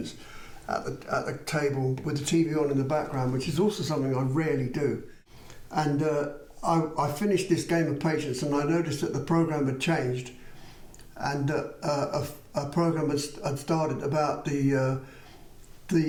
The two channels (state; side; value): identical; both; correlation 1.00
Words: at the table with the TV on in the background, which is also something I rarely do. And I finished this game of patience, and I noticed that the program had changed, and a program had started about the